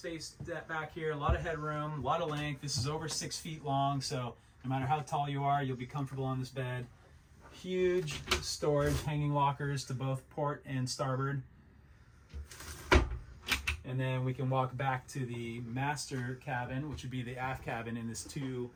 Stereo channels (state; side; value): identical; both; correlation 1.00